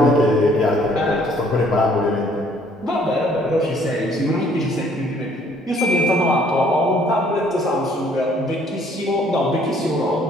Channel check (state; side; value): normal; both; correlation 0.61